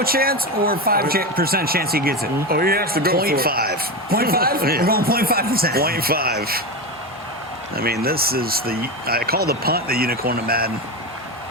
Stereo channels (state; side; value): normal; both; correlation 0.18